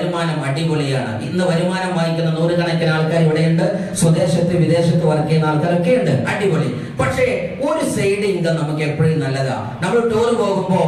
അടിപൊളിയാണ്. ഇന്ന് വരുമാനം വാങ്ങിക്കുന്ന നൂറുകണക്കിന് ആൾക്കാർ ഇവിടെയുണ്ട്. സ്വദേശത്ത് വിദേശത്ത് വർക്ക് ചെയ്യുന്ന ആൾക്കാരൊക്കെ ഉണ്ട്, അടിപൊളി. പക്ഷേ ഒരു സൈഡ് ഇൻകം നമുക്ക് എപ്പോഴും നല്ലതാ. നമ്മൾ ടൂർ പോകുമ്പോ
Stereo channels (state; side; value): identical; both; correlation 1.00